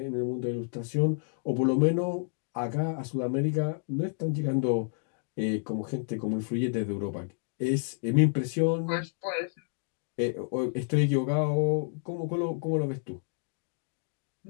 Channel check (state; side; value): silent; right; digital silence